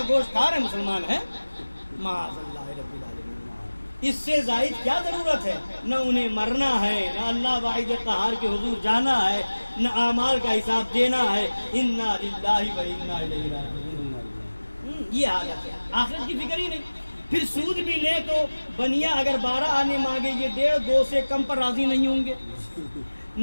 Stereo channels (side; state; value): both; inverted; correlation -1.00